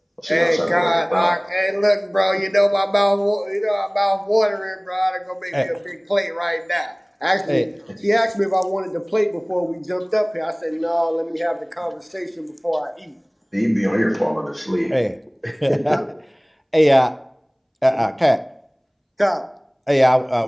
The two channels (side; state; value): both; identical; correlation 1.00